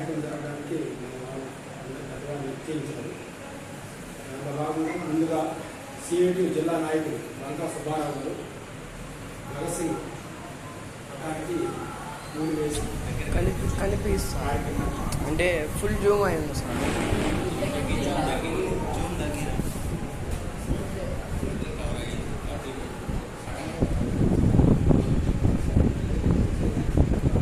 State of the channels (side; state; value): both; identical; correlation 1.00